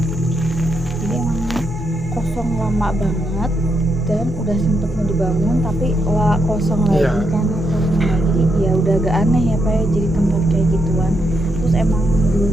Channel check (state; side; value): normal; both; correlation 0.80